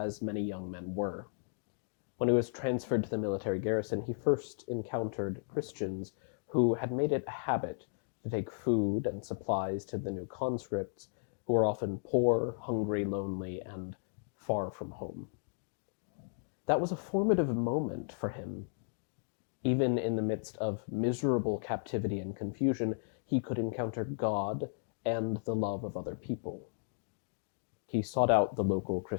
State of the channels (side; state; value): right; silent; digital silence